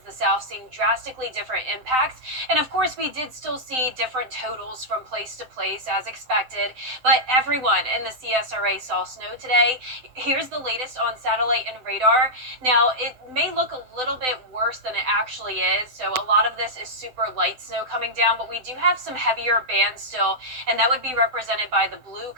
the south, seeing drastically different impacts. And of course, we did still see different totals from place to place as expected, but everyone in the CSRA saw snow today. Here's the latest on satellite and radar. Now, it may look a little bit worse than it actually is. So a lot of this is super light snow coming down, but we do have some heavier bands still, and that would be represented by the blue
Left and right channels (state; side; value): late; left; 7.8 ms